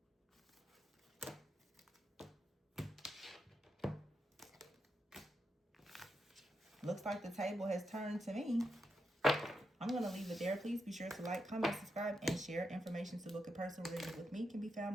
looks like the table has turned to me. I'm going to leave it there. Please be sure to like, comment, subscribe, and share. Information to book a personal reading with me can be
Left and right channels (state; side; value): normal; both; correlation 0.85